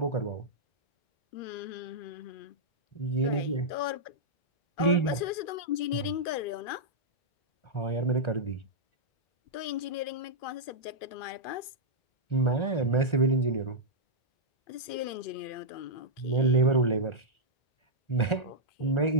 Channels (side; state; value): right; late; 2.5 ms